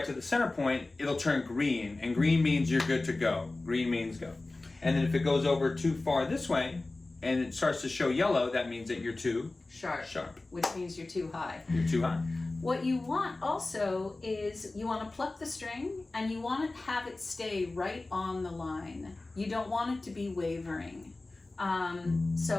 to the center point, it'll turn green, and green means you're good to go. Green means go. And then if it goes over too far this way and it starts to show yellow, that means that you're too sharp. Which means you're too high. You're too high. What you want also is you want to pluck the string, and you want to have it stay right on the line. You don't want it to be wavering.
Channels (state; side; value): quieter; right; 3.1 dB